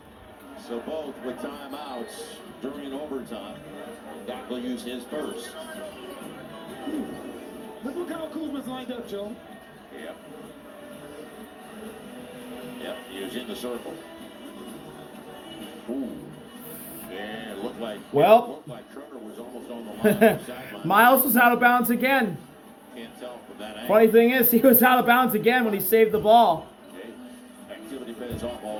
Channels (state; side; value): identical; both; correlation 1.00